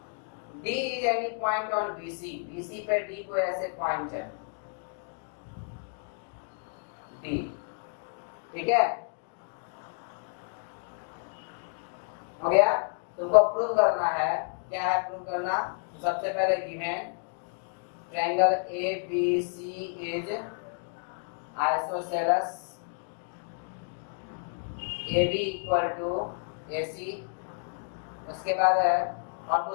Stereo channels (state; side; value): silent; right; 57 dB below the other